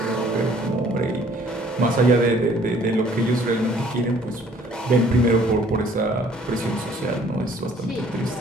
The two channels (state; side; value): normal; both; correlation 0.57